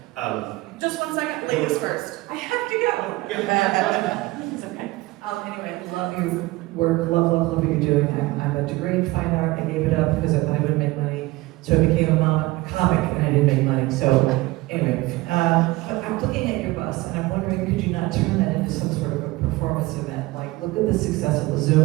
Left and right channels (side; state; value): left; quieter; 20.2 dB